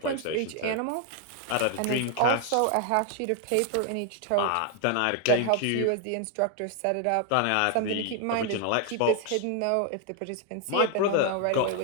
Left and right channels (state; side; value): different; both; correlation 0.00